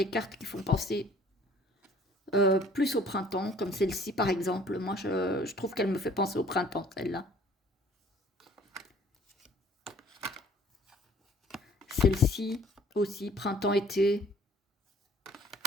cartes qui font penser plus au printemps, comme celle-ci par exemple. Moi, je trouve qu'elle me fait penser au printemps, celle-là. Celle-ci aussi, printemps-été.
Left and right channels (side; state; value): both; normal; correlation 0.55